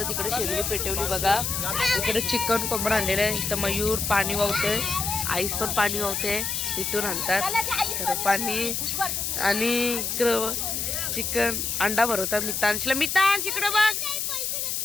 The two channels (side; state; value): left; noise; hiss, 1 dB below the sound